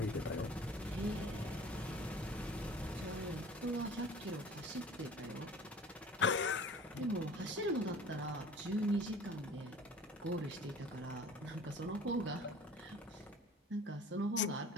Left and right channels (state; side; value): normal; both; correlation 0.45